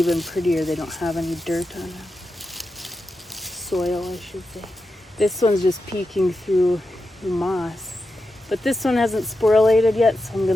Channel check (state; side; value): normal; both; correlation 0.90